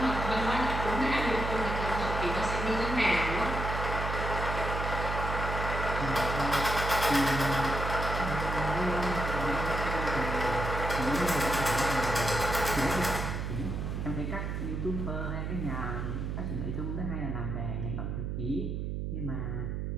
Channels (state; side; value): noise; right; hum, 3 dB below the sound